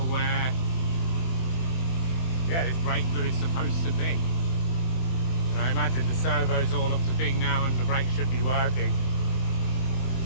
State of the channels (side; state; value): right; late; 24 ms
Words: where, yeah, this brake fluid's supposed to be. And I imagine the servo's all up to thing now and the brakes should be working.